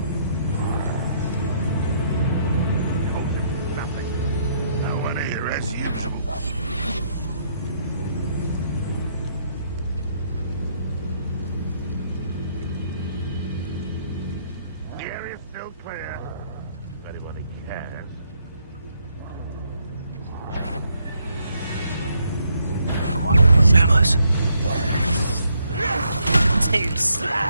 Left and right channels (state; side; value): inverted; both; correlation -0.73